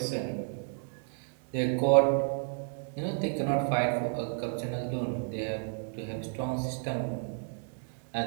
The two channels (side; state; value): left; silent; 57 dB below the other